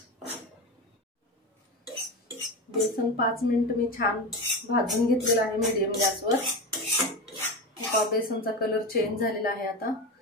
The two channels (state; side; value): normal; both; correlation 0.22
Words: बेसन 5 मिनिट मी छान भाजून घेतलेलं आहे मीडियम गॅसवर। बेसनचा कलर चेंज झालेला आहे आता,